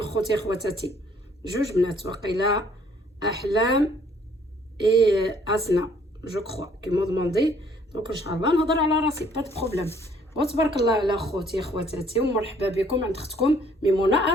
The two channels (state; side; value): normal; both; correlation 0.61